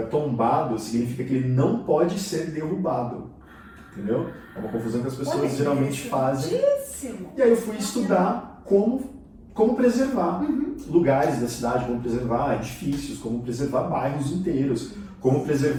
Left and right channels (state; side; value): identical; both; correlation 1.00